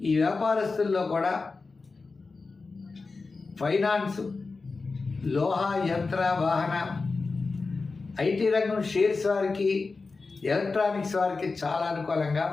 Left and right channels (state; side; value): quieter; right; 4.1 dB